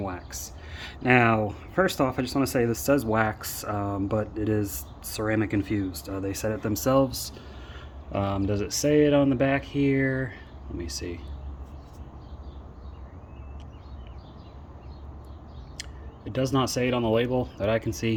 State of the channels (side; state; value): both; identical; correlation 1.00